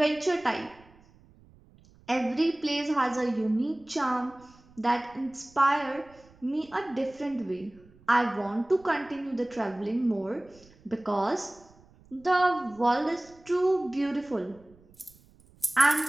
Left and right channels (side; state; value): right; noise; rumble, 27 dB below the sound